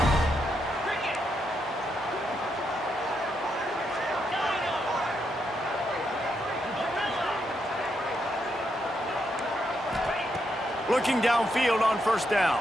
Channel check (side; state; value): both; normal; correlation 0.80